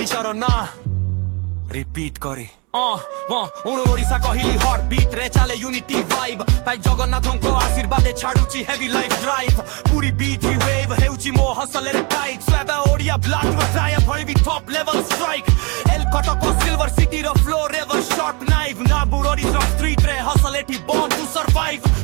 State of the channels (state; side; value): quieter; left; 30.5 dB